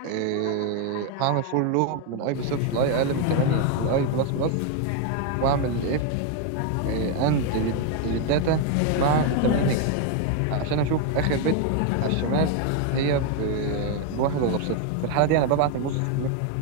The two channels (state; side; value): different; both; correlation 0.01